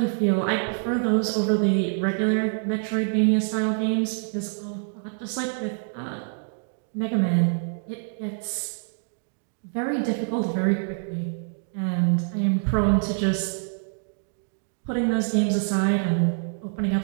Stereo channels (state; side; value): silent; left; digital silence